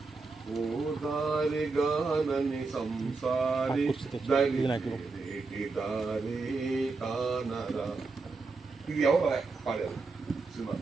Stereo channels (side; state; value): left; quieter; 4.0 dB